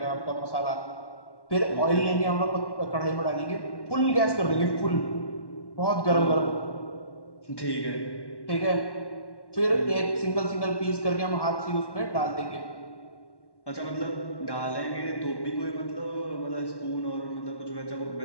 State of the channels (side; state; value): right; late; 1.1 ms